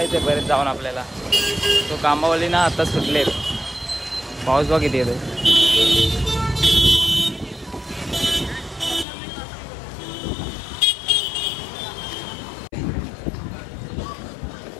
आहे. परत जाऊन आपल्याला तो कामावली ना आता सुटले. पाऊस बघ किती येतो.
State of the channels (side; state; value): right; drops out; at 9.1 s